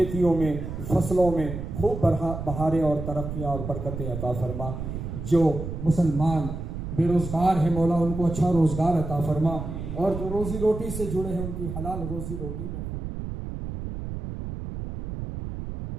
में, फसलों में खूब बहारें और तरक्कियाँ और बरकतें अता फरमा। जो मुसलमान बेरोज़गार हैं मौला उनको अच्छा रोज़गार अता फरमा, और जो रोज़ी रोटी से जुड़े हैं उनकी हलाल रोज़ी रोटी में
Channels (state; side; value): noise; right; rumble, 6 dB below the sound